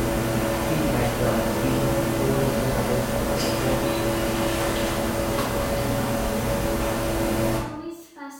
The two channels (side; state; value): both; identical; correlation 1.00